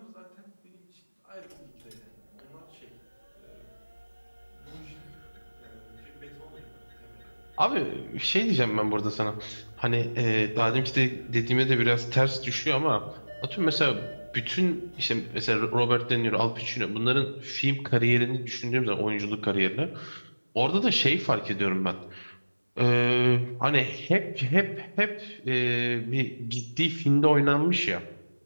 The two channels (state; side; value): inverted; both; correlation -1.00